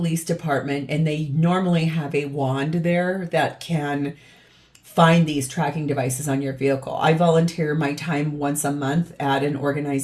department, and they normally have a wand there that can find these tracking devices on your vehicle. I volunteer my time once a month at an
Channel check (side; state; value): both; identical; correlation 1.00